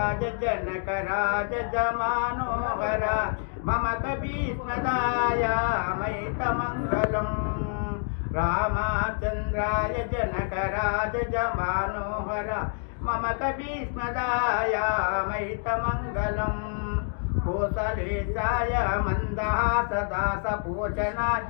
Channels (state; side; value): silent; right; 60 dB below the other